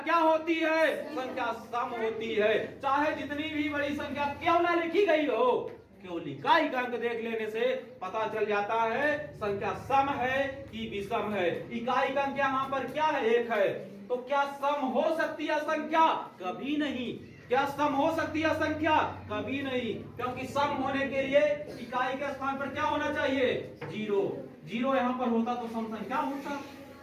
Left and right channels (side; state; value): both; identical; correlation 1.00